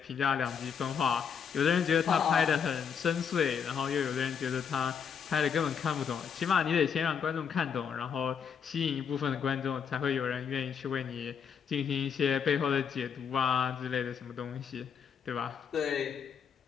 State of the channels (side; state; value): right; quieter; 7.1 dB